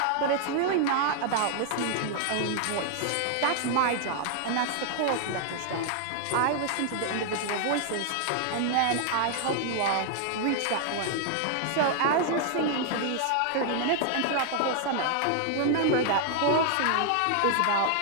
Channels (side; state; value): both; different; correlation 0.00